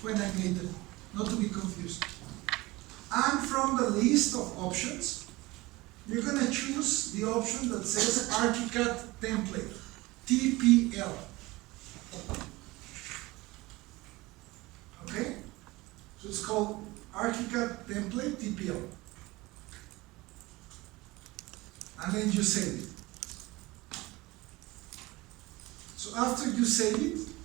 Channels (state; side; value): quieter; left; 21.0 dB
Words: when I made them, not to be confused. And from the list of options, you're going to choose the option that says ArchiCAD template, TPL. Okay? So it's called ArchiCAD template, TPL. And then you save it. So after you save it,